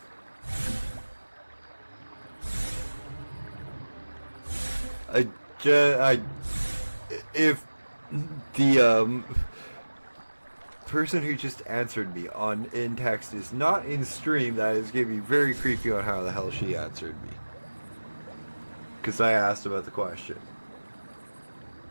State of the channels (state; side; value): inverted; both; correlation -1.00